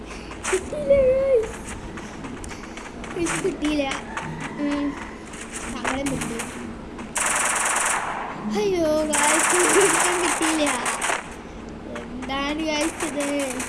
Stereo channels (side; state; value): both; identical; correlation 1.00